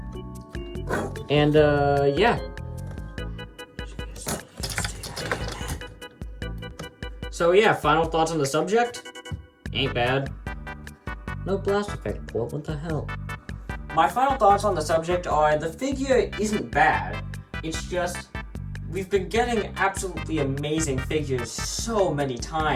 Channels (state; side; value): identical; both; correlation 1.00